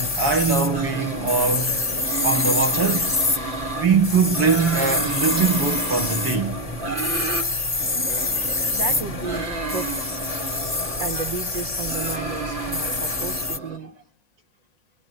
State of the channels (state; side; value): late; left; 1.7 ms